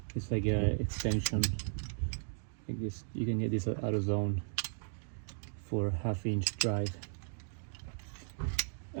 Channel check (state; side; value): silent; left; digital silence